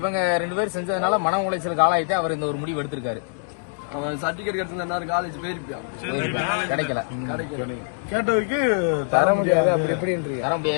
2 பேர் செஞ்சதுனால மன உளைச்சலுக்கு ஆளாயிட்டு அவர் இந்த ஒரு முடிவு எடுத்திருக்காரு. அவன் சர்டிபிகேட் கிடைச்சிருந்தா காலேஜ் போயிருப்பான். கிடைக்கல. கேட்டதுக்கு தர முடியாது. தர முடியாது.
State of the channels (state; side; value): silent; right; digital silence